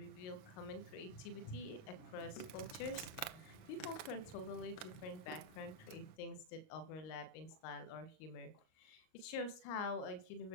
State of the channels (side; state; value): right; late; 37 ms